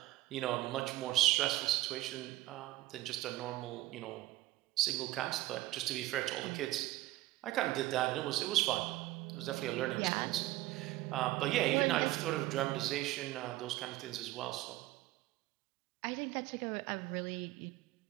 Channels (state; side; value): quieter; left; 16.7 dB